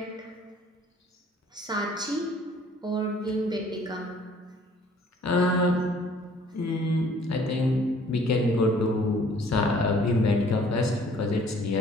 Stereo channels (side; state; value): both; normal; correlation 0.56